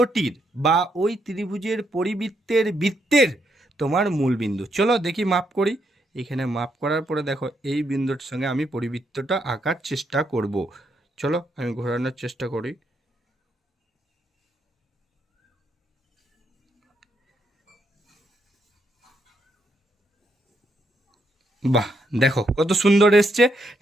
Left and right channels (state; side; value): normal; both; correlation 0.77